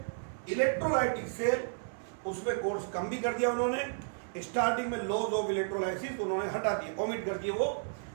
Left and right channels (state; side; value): silent; left; digital silence